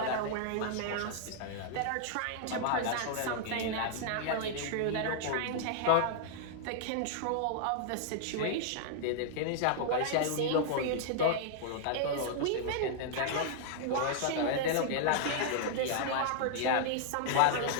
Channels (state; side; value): different; both; correlation -0.01